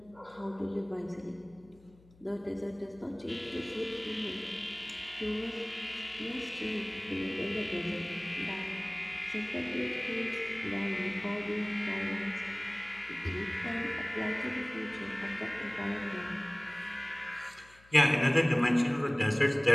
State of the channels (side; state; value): left; noise; hum, 26 dB below the sound